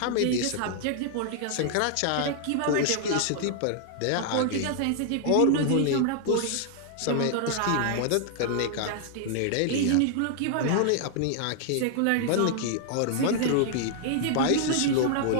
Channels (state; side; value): different; both; correlation 0.00